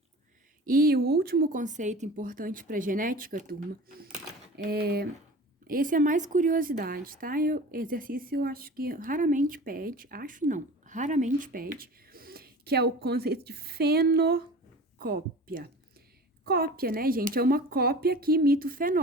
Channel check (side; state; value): both; normal; correlation 0.38